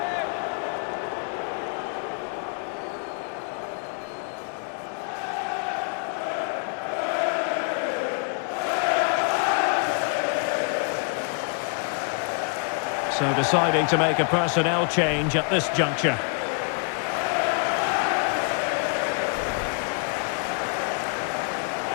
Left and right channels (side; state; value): right; quieter; 39.2 dB